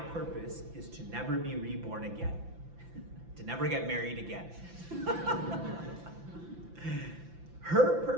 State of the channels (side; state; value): left; late; 5.9 ms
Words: is to never be reborn again, to never get married again. Her